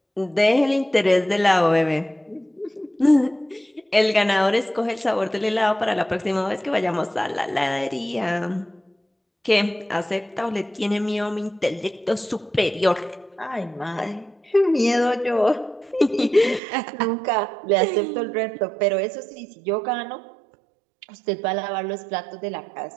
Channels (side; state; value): left; drops out; at 16.6 s